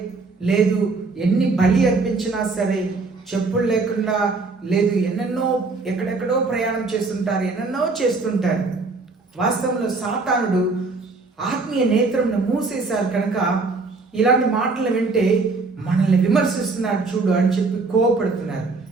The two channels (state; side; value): quieter; left; 3.9 dB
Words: లేదు ఎన్ని బలి అర్పించినా సరే, చెప్పులు లేకుండా, లేదు ఎన్నెన్నో ఎక్కడెక్కడో ప్రయాణం చేస్తుంటారు, ఎన్నెన్నో చేస్తుంటారు. వాస్తవంలో సాతానుడు ఆత్మీయ నేత్రంను మూసేశారు. కనుక ఇలాంటి మాటలు వింటే మనల్ని విమర్శిస్తున్నాడు చూడు అని చెప్పి కోపడుతున్నారు.